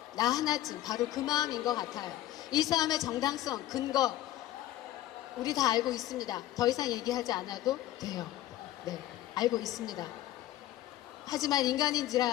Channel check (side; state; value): right; quieter; 14.2 dB